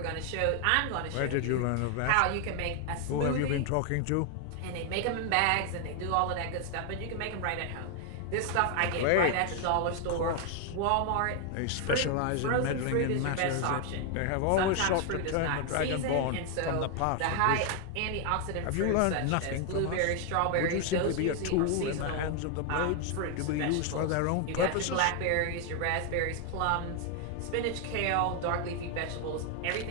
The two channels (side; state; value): both; different; correlation 0.00